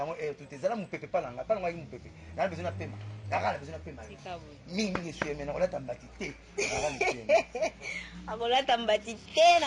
tout ezala mupepe palanga palanga ki mupepe na besoin na pema na besoin na pema mingi suis mais na olata mbati te akola tambati te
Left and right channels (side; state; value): both; identical; correlation 1.00